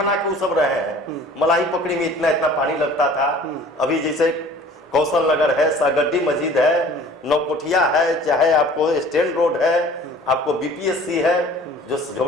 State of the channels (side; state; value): both; normal; correlation 0.48